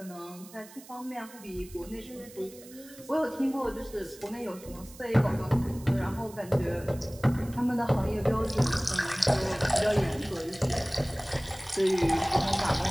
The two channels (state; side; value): noise; right; hiss, 20 dB below the sound